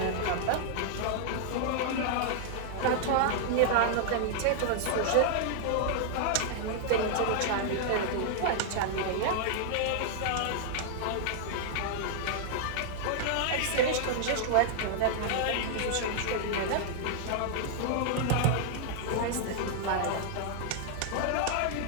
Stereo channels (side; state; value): both; different; correlation -0.01